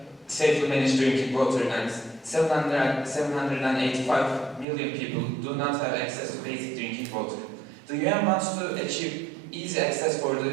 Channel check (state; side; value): drops out; left; at 4.7 s